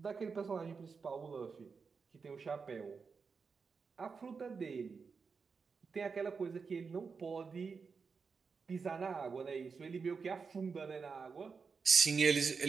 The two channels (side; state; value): left; quieter; 5.3 dB